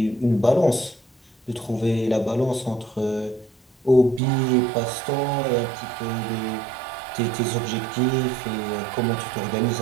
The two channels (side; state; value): left; drops out; at 4.2 s